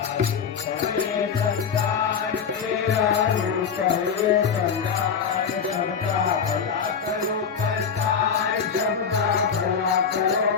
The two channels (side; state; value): right; quieter; 6.6 dB